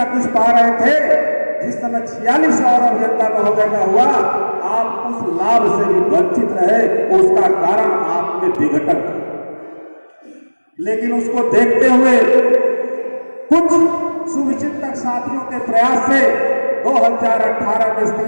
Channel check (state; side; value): inverted; both; correlation -1.00